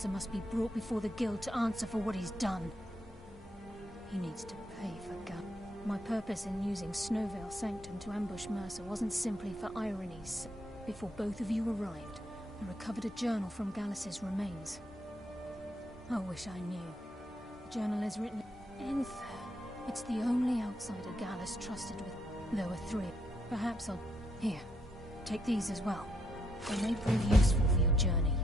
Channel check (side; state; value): both; normal; correlation 0.76